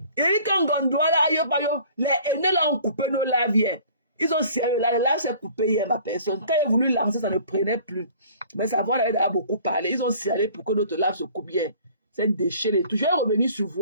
il dit qu'on gondoit là, les aînés là ont coupé nos laviers. Ils ont serré là, le lave s'est coupé hier, ma personne. Quand ils ont voulu lancer, ça ne prenait plus. Mais ça va, on a beaucoup parlé. Ils ont serré pour que notre lave se coupe bien. C'est déchiré et tout. Je vais revenir sur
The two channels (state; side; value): inverted; both; correlation -0.50